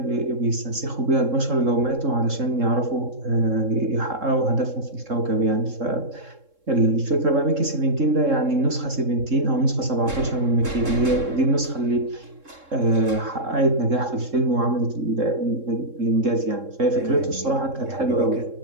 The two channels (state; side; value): late; left; 3.7 ms